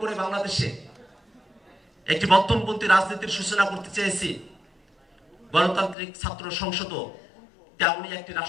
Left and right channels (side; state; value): right; drops out; at 6.0 s